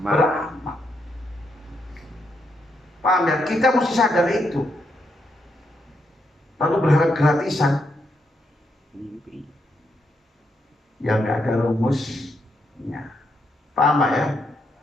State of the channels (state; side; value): normal; both; correlation 0.79